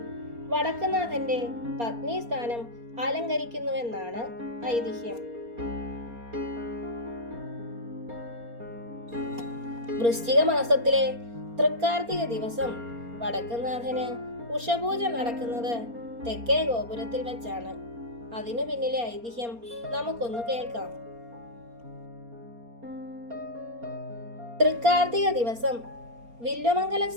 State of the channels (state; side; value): late; left; 4.3 ms